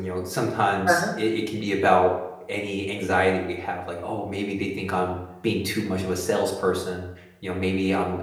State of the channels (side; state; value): both; identical; correlation 1.00